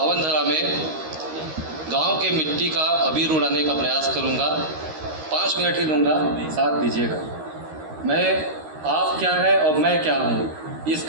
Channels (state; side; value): late; left; 13 ms